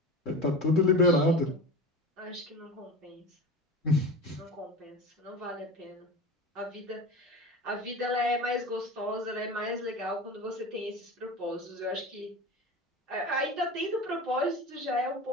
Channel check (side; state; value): both; normal; correlation 0.31